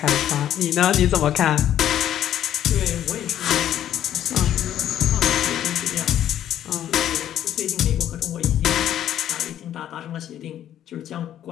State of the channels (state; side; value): quieter; right; 11.1 dB